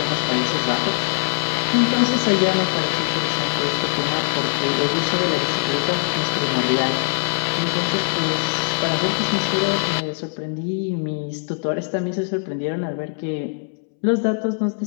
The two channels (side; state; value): right; silent; 65 dB below the other